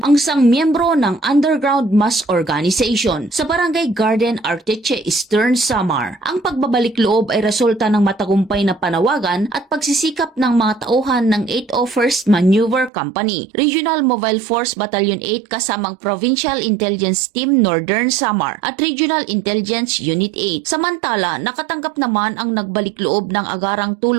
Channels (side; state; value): left; drops out; at 12.9 s